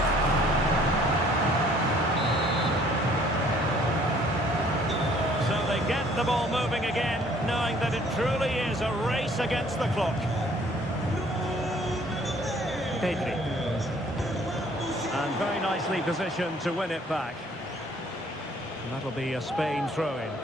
Get the ball moving again, knowing that it truly is a race against the clock. Pedri. And very nicely positioned to win it back. And that'll be a Spain throw-in.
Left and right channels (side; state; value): both; normal; correlation 0.58